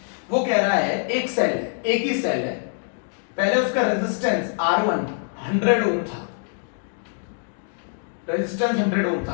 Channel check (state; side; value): silent; right; 63 dB below the other